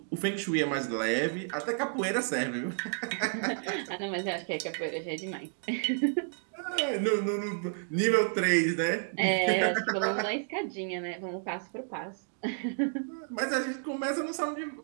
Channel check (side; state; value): left; silent; digital silence